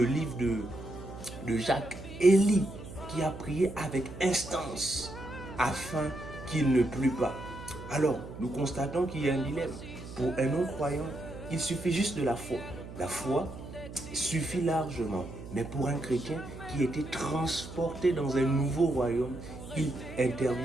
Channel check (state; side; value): noise; right; hum, 13 dB below the sound